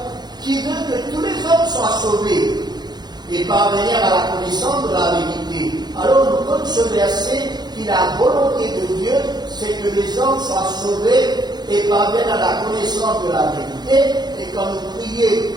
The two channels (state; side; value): late; left; 0.20 ms